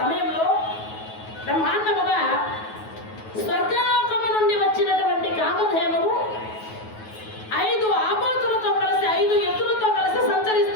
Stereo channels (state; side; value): late; right; 9.3 ms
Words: బ్రహ్మాండముగా స్వర్గలోకము నుండి వచ్చినటువంటి కామధేనువు 5 ఆబోతులతో కలిసి 5 ఎద్దులతో కలిసి